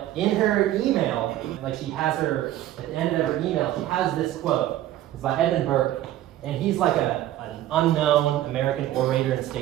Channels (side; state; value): left; quieter; 13.5 dB